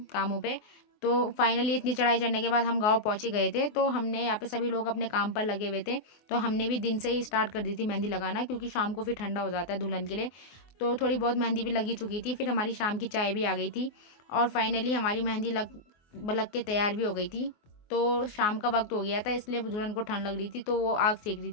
कामों पे। तो फाइनली इतनी चढ़ाई चढ़ने के बाद हम गांव पहुंचे गए थे। तो हमने यहाँ पे सभी लोग अपने काम पर लगे हुए थे। तो हमने भी दिन से ही स्टार्ट कर दी थी मेहंदी लगाना, क्योंकि शाम को फिर ठंडा हो जाता है दुल्हन के लिए। तो थोड़ी बहुत मेहंदी भी लगी चुकी थी। फिर हमारी शाम की चाय भी आ गई थी और फाइनली हमारी मेहंदी लग के तैयार भी हो गई थी। तो शाम का वक्त हो गया था, इसलिए दुल्हन को ठंड लग रही थी, तो वो आग सेक रही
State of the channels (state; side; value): late; right; 24 ms